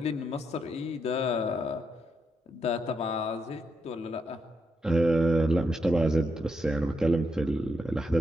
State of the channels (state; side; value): normal; both; correlation 0.82